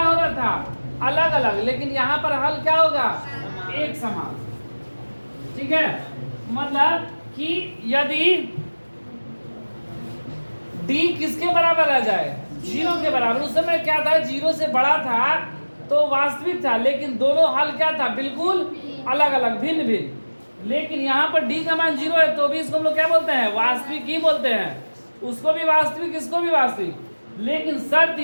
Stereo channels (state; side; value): inverted; both; correlation -1.00